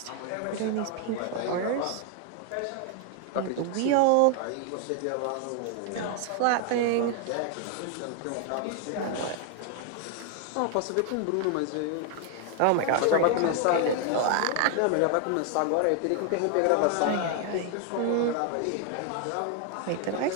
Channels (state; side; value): different; both; correlation 0.00